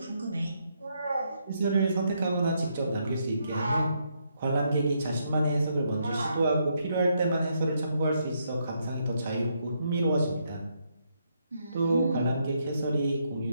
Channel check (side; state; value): both; inverted; correlation -0.76